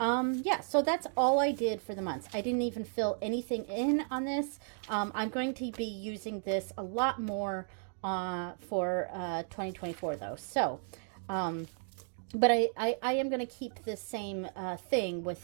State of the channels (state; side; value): silent; left; 55 dB below the other